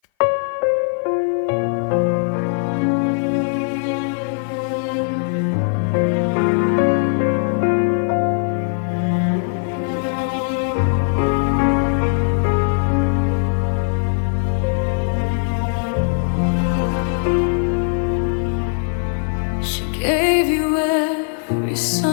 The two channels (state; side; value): silent; right; 57 dB below the other